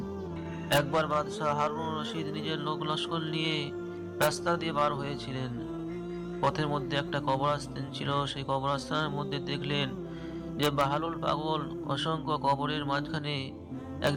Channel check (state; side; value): identical; both; correlation 1.00